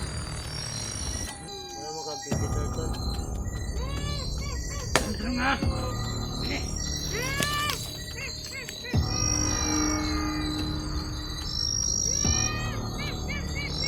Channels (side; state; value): both; identical; correlation 1.00